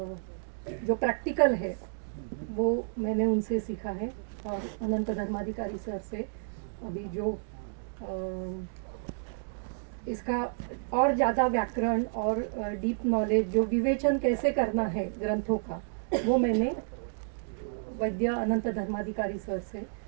जो प्रैक्टिकल है वो मैंने उनसे सीखा है। और अनंत धर्माधिकारी सर से अभी जो इसका और ज़्यादा व्याकरण और डीप नॉलेज, जो विवेचन कैसे करना है ग्रंथों का, वो मैंने वैद्य अनंत धर्माधिकारी सर से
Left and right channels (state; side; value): silent; left; digital silence